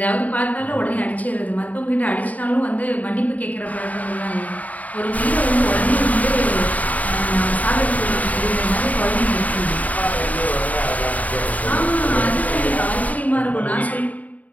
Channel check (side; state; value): right; late; 0.073 ms